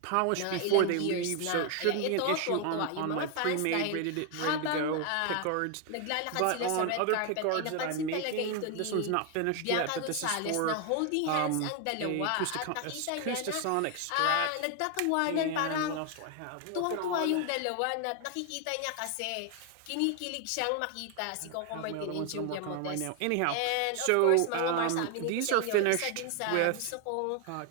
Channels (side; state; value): both; different; correlation 0.01